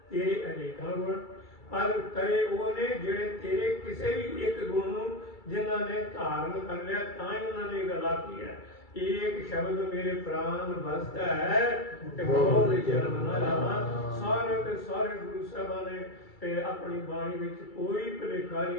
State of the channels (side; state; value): right; late; 2.3 ms